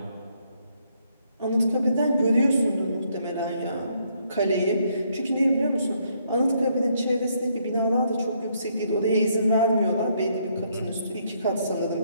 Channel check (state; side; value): inverted; both; correlation -0.72